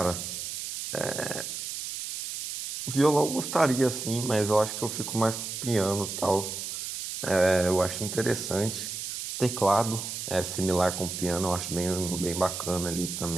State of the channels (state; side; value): noise; right; hiss, 6 dB below the sound